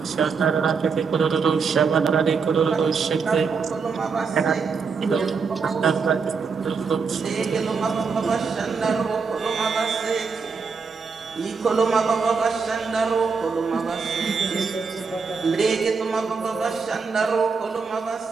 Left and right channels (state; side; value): quieter; left; 5.2 dB